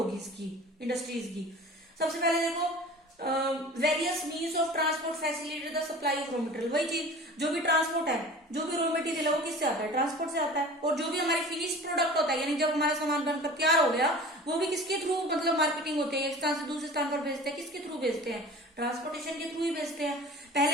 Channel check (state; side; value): normal; both; correlation 0.40